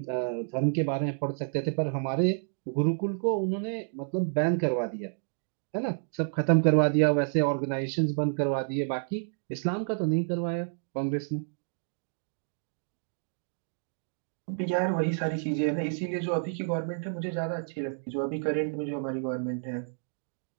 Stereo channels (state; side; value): silent; left; digital silence